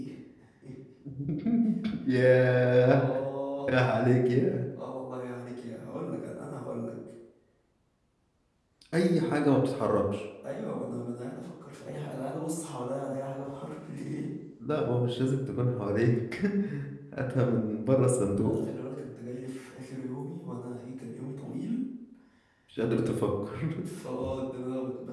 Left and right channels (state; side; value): identical; both; correlation 1.00